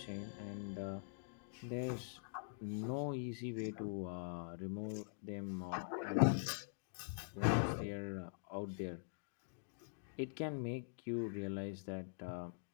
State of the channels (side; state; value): right; silent; digital silence